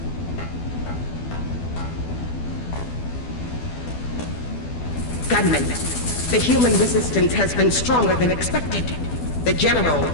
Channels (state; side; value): late; right; 12 ms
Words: Gunman, the human resistance has been stronger than expected. The General